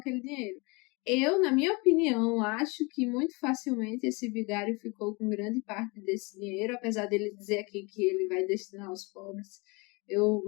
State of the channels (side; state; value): right; quieter; 27.9 dB